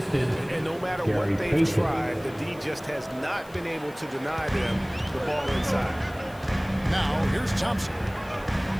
no matter what they've tried, the D just has not been able to deny them the ball inside. Now, here's Thompson.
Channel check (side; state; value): left; noise; hiss, 24 dB below the sound